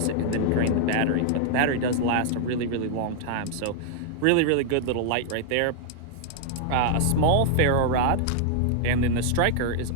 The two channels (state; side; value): different; both; correlation -0.01